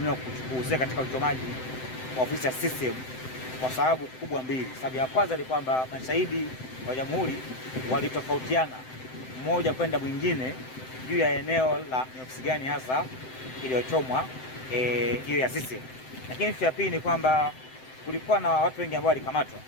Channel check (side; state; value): right; late; 7.8 ms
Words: kuhusika katika uchomaji wa ofisi ya CCM kwa sababu kubwa mbili. Sababu ya kwanza ni kwamba mashahidi wa Jamhuri walitofautiana mmoja kwenda mwingine juu ya eneo la ni ofisi gani hasa iliyochomwa hiyo ya CCM. Lakini ya pili ni kwamba kulikuwa na watu wengi ambao walikamatwa.